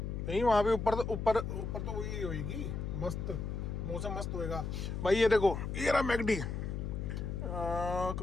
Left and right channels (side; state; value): left; noise; hum, 4 dB below the sound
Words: नहीं वहाँ पे ऊपर तो वही होगी, मस्त मौसम मस्त होएगा। भाई ये देखो, ये रहा मैकडी।